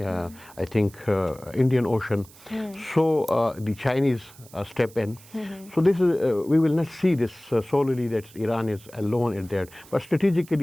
I think, Indian Ocean. So the Chinese step in. So this is, we will not see this solely that Iran is alone in that. But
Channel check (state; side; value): noise; right; hiss, 23 dB below the sound